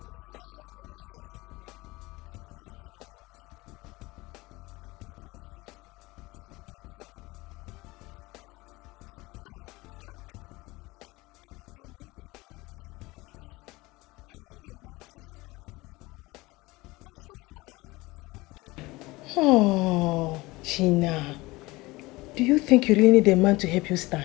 because of you. Lady Marion. Thank you very much, Lady Marion. But what I face now is mightier than alcohol. Lady Marion, I need a man in my life. I need a man to start me up. And so far, I haven't seen any. Oh, Gina. Do you think you really need a man to help you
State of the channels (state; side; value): quieter; right; 21.4 dB